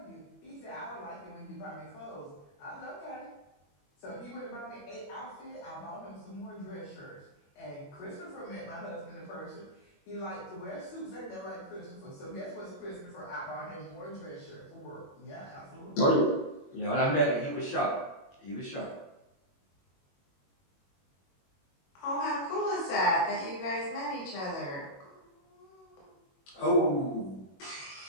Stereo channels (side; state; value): right; late; 21 ms